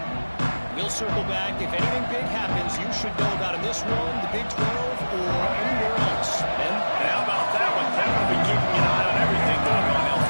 We'll circle back. If anything big happens, you should know about in this one, the Big 12, or anywhere else. Ben? How about that one? Kevin will be keeping an eye on everything going on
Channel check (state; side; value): inverted; both; correlation -1.00